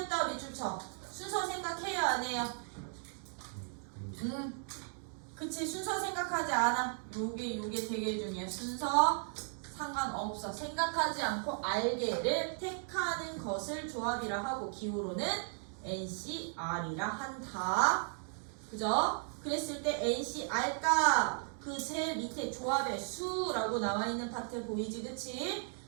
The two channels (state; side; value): silent; left; 54 dB below the other